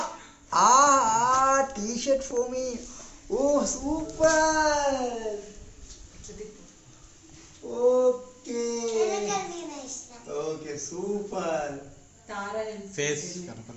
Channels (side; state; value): both; identical; correlation 1.00